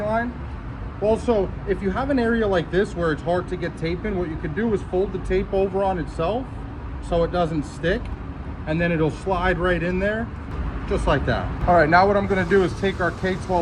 Also, if you have an area like this where it's hard to get tape in, what you could do is fold the tape over on itself so it doesn't stick, and then it'll slide right in there, just like that. All right, now what I'm gonna do is take our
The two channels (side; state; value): both; identical; correlation 1.00